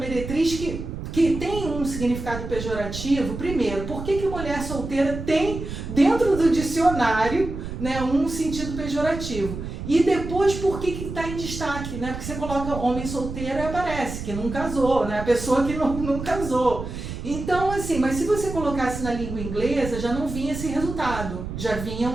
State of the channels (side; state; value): right; noise; rumble, 8 dB below the sound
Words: que que tem um significado pejorativo, primeiro, por que mulher solteira tem dentro do dicionário, né, um sentido pejorativo? E depois, por que está em destaque? Né? Porque você coloca homem solteiro e aparece que não casou, né? A pessoa que não casou. Então, assim, mas se você colocasse na língua inglesa, já não vinha esse resultado. Já vinha